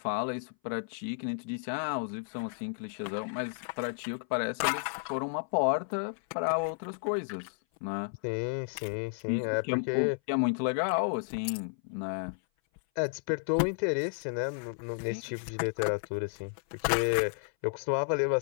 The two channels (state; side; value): silent; right; 56 dB below the other